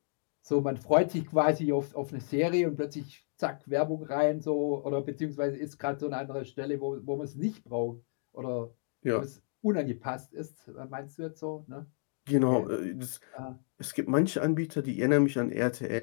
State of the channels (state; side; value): silent; right; digital silence